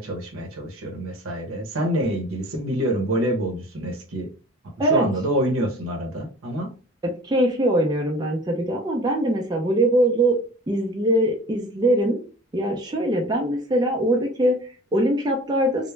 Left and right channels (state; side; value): normal; both; correlation 0.44